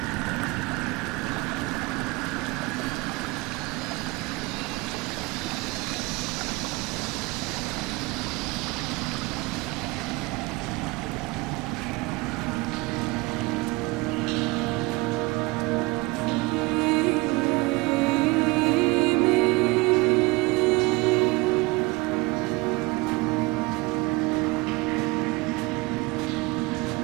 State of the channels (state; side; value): quieter; left; 23.9 dB